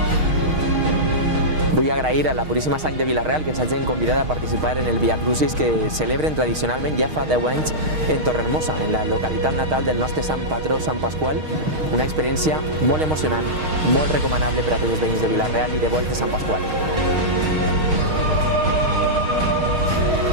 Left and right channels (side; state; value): left; late; 6.4 ms